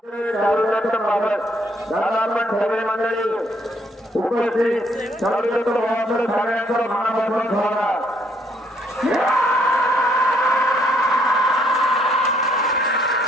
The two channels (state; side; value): normal; both; correlation 0.68